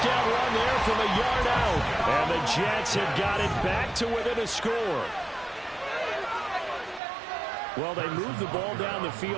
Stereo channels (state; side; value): drops out; left; at 7.0 s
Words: run there from a yard out. And the Jets have got it back to within a score. Well, they move the ball down the